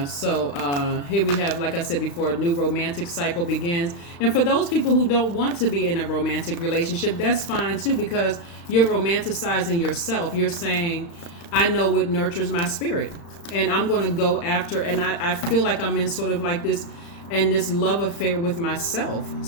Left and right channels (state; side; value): late; right; 35 ms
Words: so here we have, like I said before, a new romantic cycle begins. And for those people who don't want to be in a romantic relationship, that's fine too, because you're romanticizing yourself. You're saying, I know what nurtures my spirit, and I'm going to go after, and I feel like I'm in sort of like this love affair with myself,